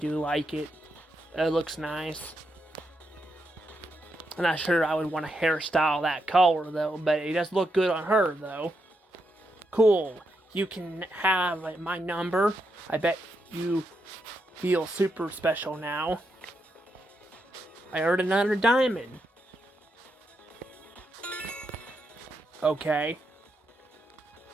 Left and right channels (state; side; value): normal; both; correlation 0.83